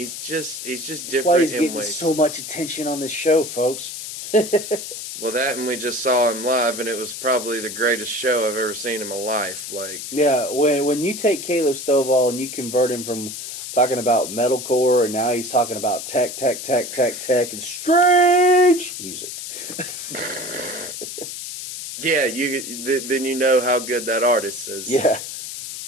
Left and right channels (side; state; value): left; noise; hiss, 8 dB below the sound